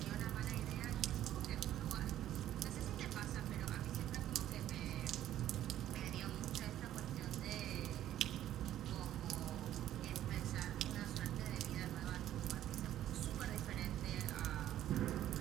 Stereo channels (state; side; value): quieter; left; 12.3 dB